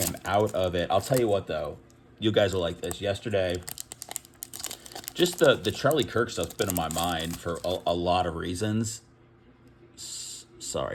out of it. I'll tell you what, though. You guys will like this. Yesterday, just the Charlie Kirk stuff's been in my mind for a lot of reasons.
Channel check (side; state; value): both; identical; correlation 1.00